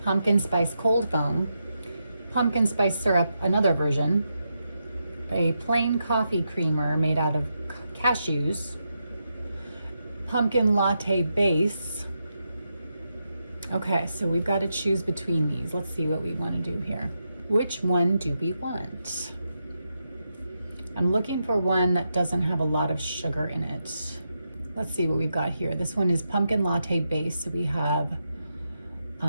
pumpkin spice cold foam, pumpkin spice syrup, another version, a plain coffee creamer made out of cashews, pumpkin latte base. Okay, so we've got to choose between these. Let's see what we want to do here. Which one do we want? I'm looking for one that doesn't have a lot of sugar in it. Let's see what we've got here. This one is pumpkin latte base. So we have,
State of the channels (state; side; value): inverted; both; correlation -0.84